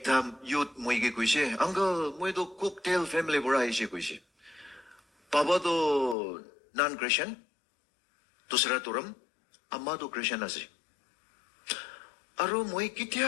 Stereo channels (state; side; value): drops out; right; at 6.2 s